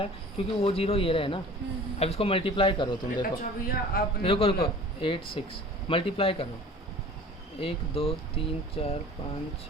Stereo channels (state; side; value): normal; both; correlation 0.44